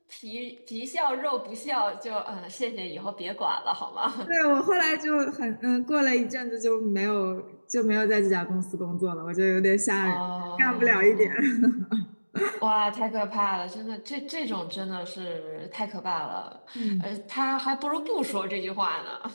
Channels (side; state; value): both; inverted; correlation -1.00